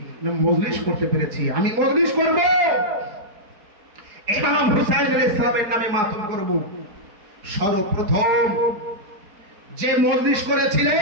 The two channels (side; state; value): left; late; 4.8 ms